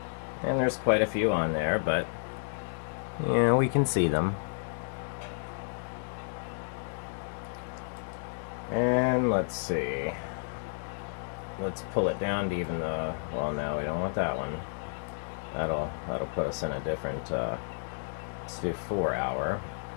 And there's quite a few on there, but yeah, we can see them. And let's see. Let's pull it down to even the, well, no, we don't want that one. That'll put us in a different, let's do 4-hour.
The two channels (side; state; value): right; silent; digital silence